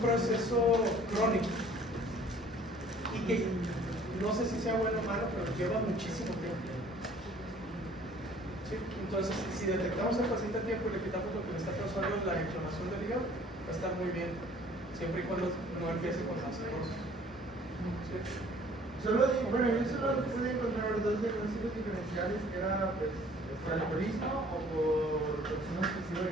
crónico y que no sé si sea bueno o malo, pero lleva muchísimo tiempo. ¿Sí? Entonces, si detectamos al paciente a tiempo y le quitamos lo que le está causando la inflamación del hígado, va a estar muy bien, siempre y cuando no empiece con la cirrosis. ¿Sí? Bueno, yo solo pude encontrar 2 pronósticos diferenciales que era pues, por alcoholismo o por consumo excesivo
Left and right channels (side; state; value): both; normal; correlation 0.54